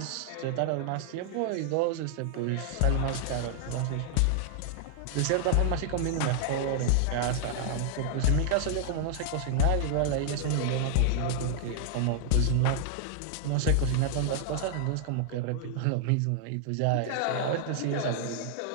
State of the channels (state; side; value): different; both; correlation 0.00